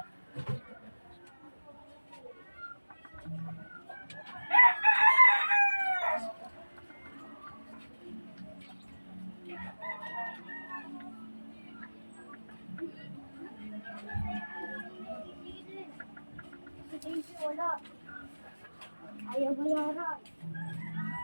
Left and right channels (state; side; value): inverted; both; correlation -1.00